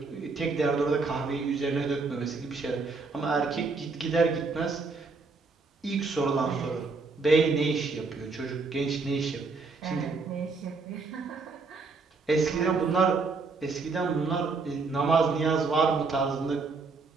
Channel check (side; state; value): left; quieter; 4.2 dB